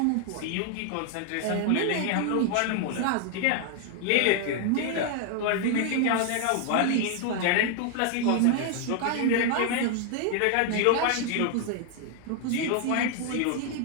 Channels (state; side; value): different; both; correlation 0.00